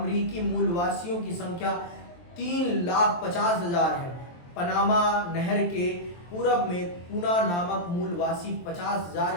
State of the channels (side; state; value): right; late; 23 ms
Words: मूलवासियों की संख्या 3,50,000 है। पनामा नहर के पूरब में पूना नामक मूलवासी